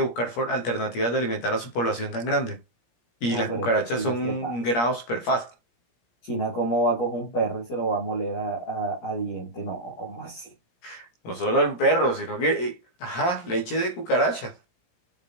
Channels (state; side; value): late; right; 17 ms